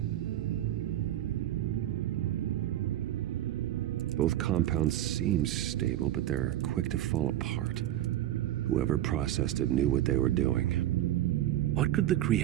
Both compounds seem stable, but they're quick to fall apart. Whoever processed it knew what they were doing. What could the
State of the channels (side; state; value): left; quieter; 13.1 dB